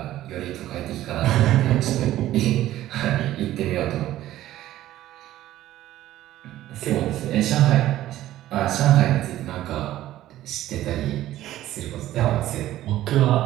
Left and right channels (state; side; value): quieter; left; 14.1 dB